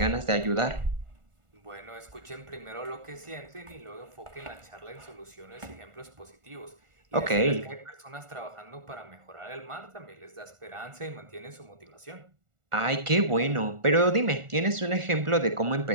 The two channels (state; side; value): late; left; 1.4 ms